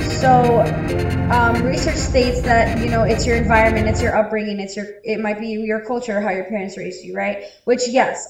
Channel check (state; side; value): identical; both; correlation 1.00